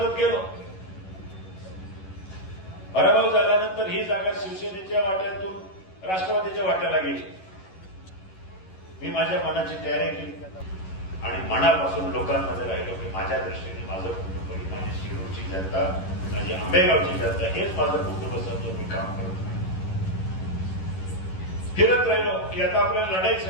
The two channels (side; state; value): right; late; 11 ms